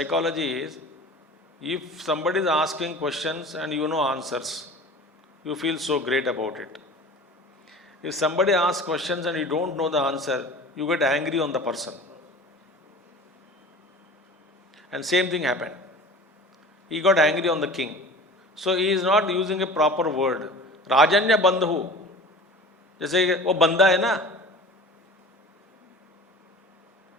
is, if somebody is asking questions and you know answers, you feel so great about it. If somebody asks questions and you don't know the answer, you get angry on the person. And same thing happened. He got angry on the king. So he is not using a proper word. Rajanya Bandhu. जैसे वो बंदा है ना,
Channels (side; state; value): both; normal; correlation 0.39